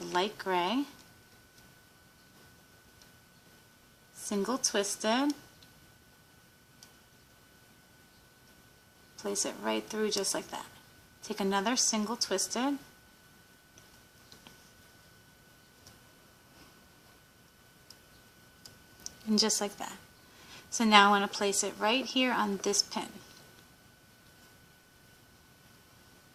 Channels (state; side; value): identical; both; correlation 1.00